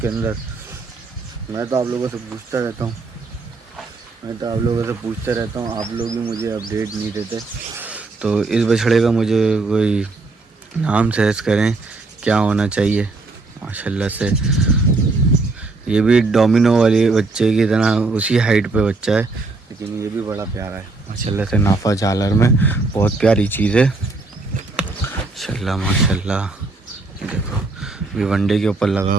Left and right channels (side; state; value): left; quieter; 3.6 dB